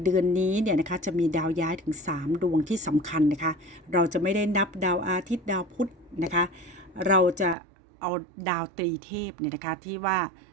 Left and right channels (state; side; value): drops out; left; at 7.6 s